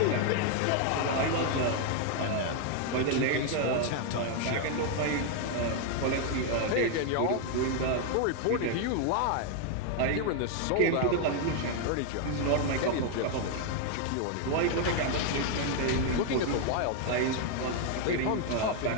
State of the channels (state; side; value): different; both; correlation 0.00